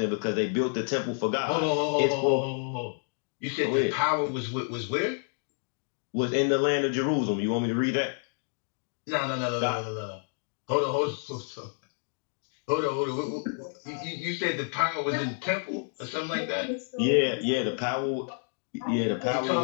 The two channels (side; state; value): right; silent; 55 dB below the other